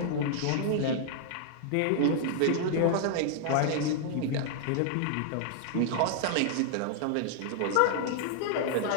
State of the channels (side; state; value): both; different; correlation -0.01